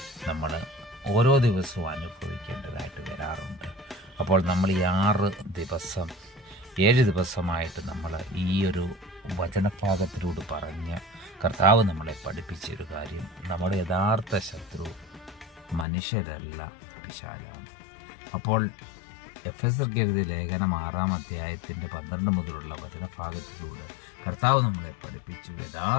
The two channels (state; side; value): drops out; right; at 15.9 s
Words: നമ്മൾ ഓരോ ദിവസവും അനുഭവിക്കേണ്ടതായിട്ട് വരാറുണ്ട്. അപ്പോൾ നമ്മൾ ഈ 7 ദിവസമായിട്ട് നമ്മൾ ഈ ഒരു വചനഭാഗത്തിലൂടെ പറഞ്ഞ കർത്താവ് നമ്മളെ പഠിപ്പിച്ചൊരു കാര്യം, നമ്മുടെ യഥാർത്ഥ ശത്രു മനുഷ്യരല്ല, പിശാചാണ്. അപ്പോൾ എഫെസർക്ക് എഴുതിയ ലേഖനം 6-ാം അധ്യായത്തിൻ്റെ 12 മുതലുള്ള വചനഭാഗത്തിലൂടെ കർത്താവ് നമ്മളെ പഠിപ്പിച്ചു,